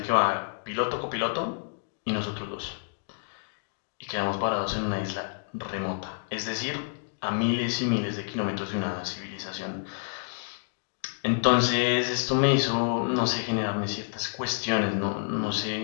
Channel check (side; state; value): right; silent; digital silence